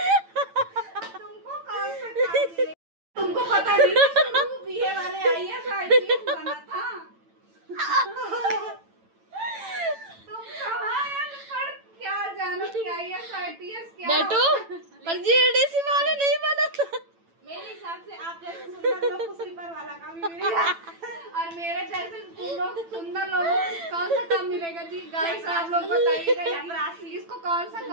तुमको कौन सा काम मिलेगा? तुमको पता नहीं बीए वाले आईएएस आईपीएस बना था। तुम कहाँ अनपढ़ क्या जानो कि आईएएस आईपीएस क्या बेटू पर जीडीसी वाले नहीं बना था। मेरे हिसाब से आप जैसे सुंदर लोग को स्लीपर वाला काम ही मिलेगा। और मेरे जैसे सुंदर लोगों को कौन सा काम मिलेगा जी? गाइस आप लोग बताइएगा इसको कौन सा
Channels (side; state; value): left; late; 9.0 ms